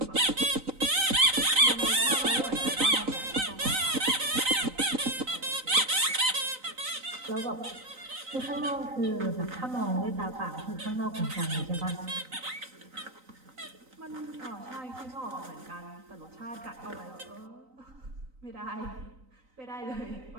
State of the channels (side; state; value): left; late; 3.9 ms